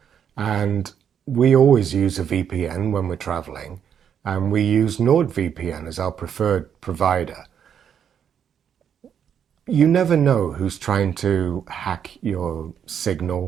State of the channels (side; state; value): left; quieter; 8.3 dB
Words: And we always use a VPN when we're traveling, and we use NordVPN as our preferred provider. You never know who's trying to hack your